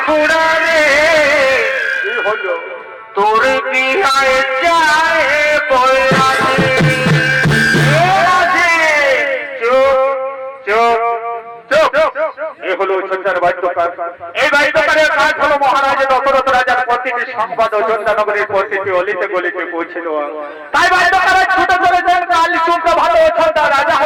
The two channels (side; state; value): both; identical; correlation 1.00